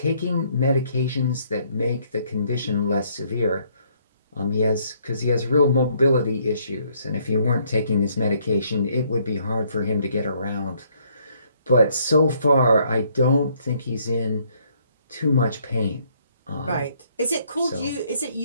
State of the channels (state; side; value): inverted; both; correlation -0.67